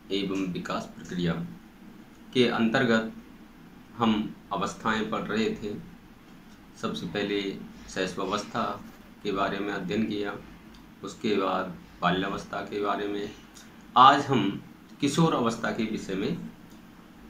एवं विकास प्रक्रिया के अंतर्गत हम अवस्थाएं पढ़ रहे थे। सबसे पहले शैशवावस्था के बारे में अध्ययन किया, उसके बाद बाल्यावस्था के बारे में। आज हम किशोर अवस्था के विषय में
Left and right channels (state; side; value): identical; both; correlation 1.00